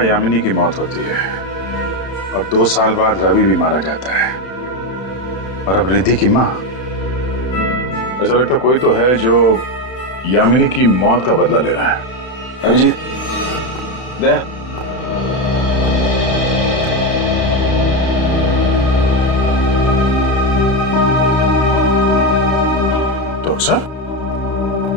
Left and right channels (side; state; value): right; late; 31 ms